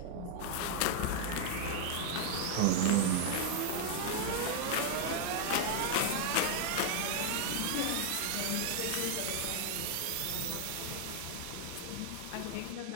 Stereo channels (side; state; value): both; different; correlation 0.00